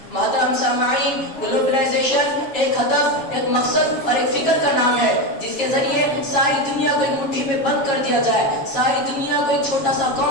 محترم سامعین، گلوبلائزیشن ایک ہدف، ایک مقصد اور ایک فکر کا نام ہے جس کے ذریعے ساری دنیا کو ایک مٹھی میں بند کر دیا جائے، ساری دنیا کو ایک چھوٹا سا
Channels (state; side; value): late; right; 7.6 ms